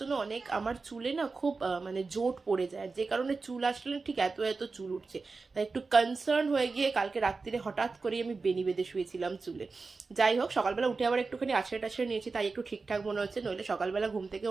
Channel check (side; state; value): left; quieter; 4.2 dB